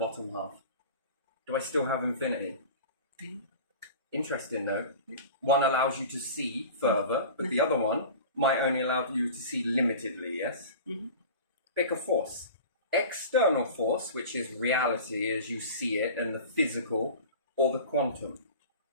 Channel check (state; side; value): inverted; both; correlation -0.37